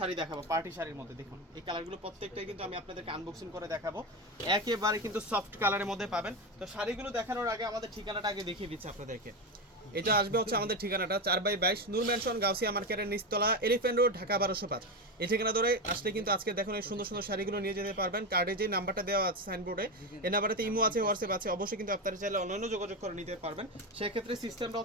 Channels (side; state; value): both; normal; correlation 0.16